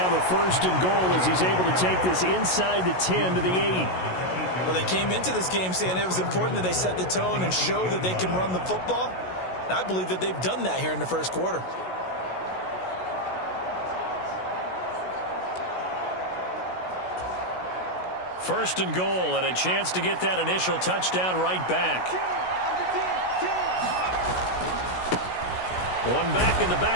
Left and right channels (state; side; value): late; right; 16 ms